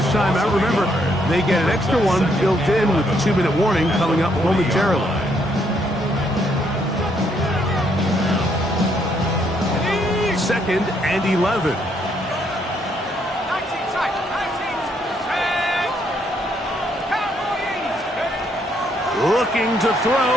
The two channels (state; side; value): normal; both; correlation 0.72